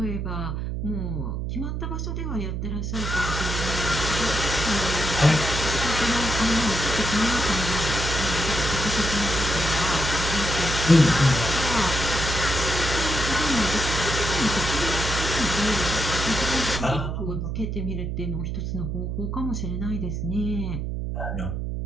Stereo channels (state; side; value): noise; right; hum, 3 dB below the sound